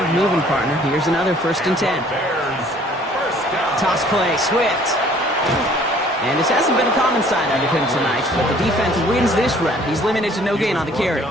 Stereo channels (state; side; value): normal; both; correlation 0.56